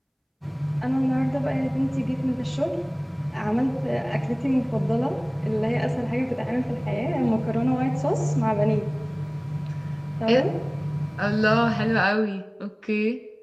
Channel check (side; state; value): both; identical; correlation 1.00